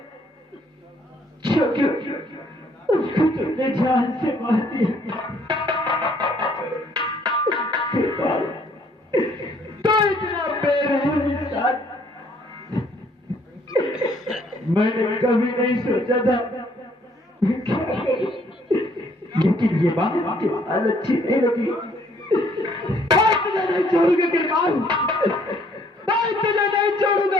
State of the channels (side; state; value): both; normal; correlation 0.64